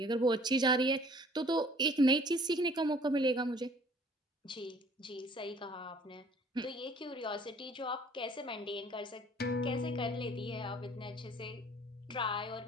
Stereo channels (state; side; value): normal; both; correlation 0.54